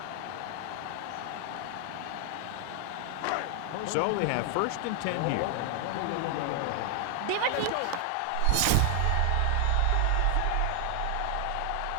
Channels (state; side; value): different; both; correlation 0.00